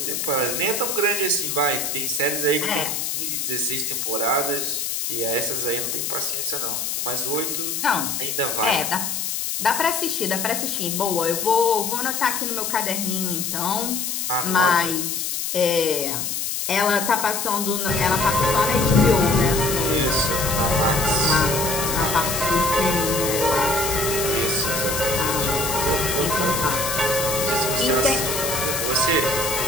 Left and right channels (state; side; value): noise; left; hiss, 2 dB below the sound